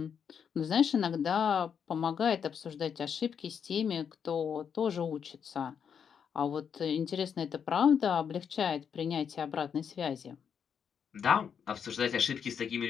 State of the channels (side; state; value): right; quieter; 7.3 dB